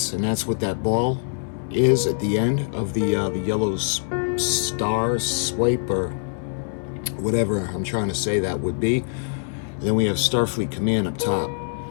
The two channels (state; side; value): silent; right; 63 dB below the other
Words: and that's what that ball is at the end of the yellow star swipe, or whatever I'm trying to say that would be. And then we have Starfleet Command up top.